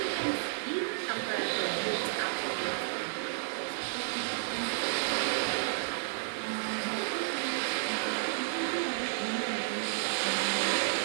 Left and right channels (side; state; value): left; silent; digital silence